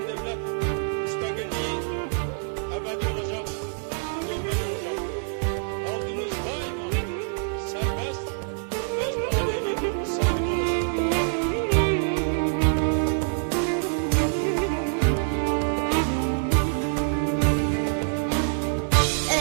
devlet müstakilliği ebedi olacak, dönmez olacaktır. Halkımız daima serbest, öz talihinin sahibi olacaktır.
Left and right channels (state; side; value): silent; left; digital silence